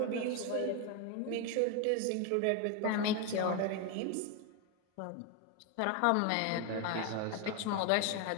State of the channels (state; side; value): different; both; correlation 0.01